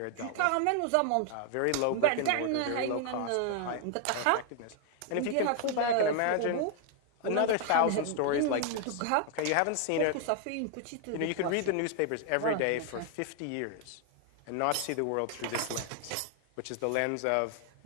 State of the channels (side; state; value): both; different; correlation 0.00